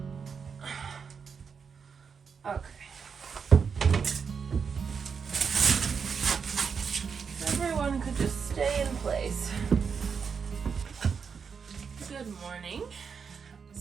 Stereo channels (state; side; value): quieter; left; 6.1 dB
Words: Okay. Everyone could just stay in place. Good morning.